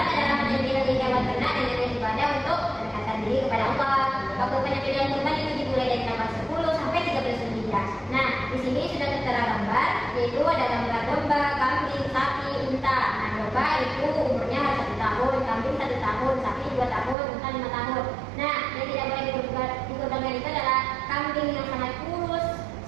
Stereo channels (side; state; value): left; drops out; at 17.2 s